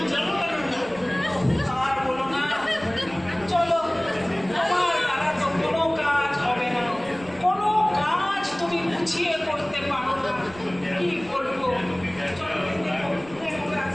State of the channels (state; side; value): noise; right; rumble, 21 dB below the sound